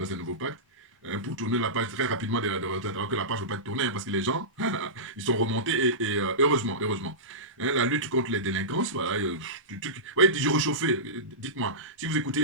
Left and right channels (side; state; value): both; normal; correlation -0.18